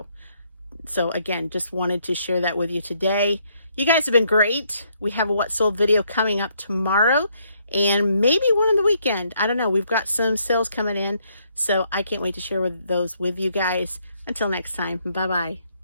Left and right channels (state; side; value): inverted; both; correlation -0.71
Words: So again, just wanted to share that with you today. You guys have been great. We have a What Sold video coming up tomorrow, and maybe one on the weekend. I don't know. We've got some sales coming in, so I can't wait to share those with you guys. Until next time, bye-bye.